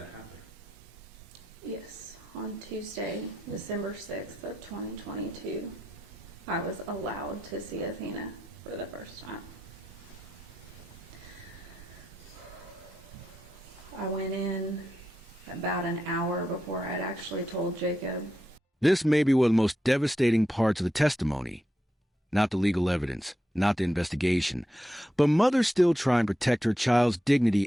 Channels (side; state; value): both; normal; correlation 0.86